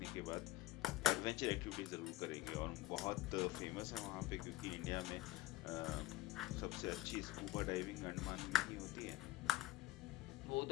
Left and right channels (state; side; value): quieter; right; 16.6 dB